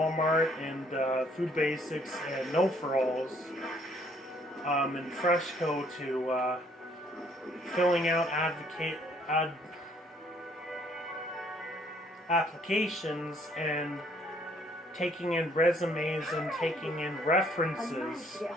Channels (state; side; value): normal; both; correlation 0.64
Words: and Food Basics and No For Alls and Freshco to filling out applications and taking in resumes and taking in references